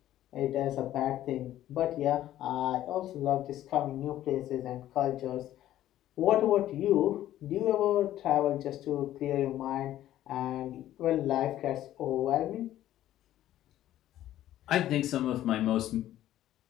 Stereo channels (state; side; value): quieter; right; 13.1 dB